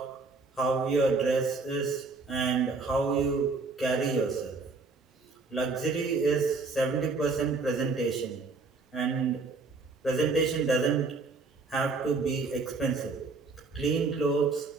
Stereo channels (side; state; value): left; quieter; 4.0 dB